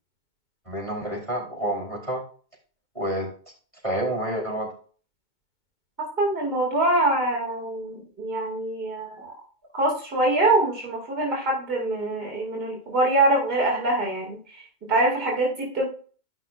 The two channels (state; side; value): late; right; 2.2 ms